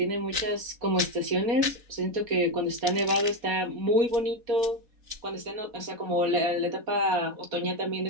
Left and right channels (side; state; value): left; late; 4.1 ms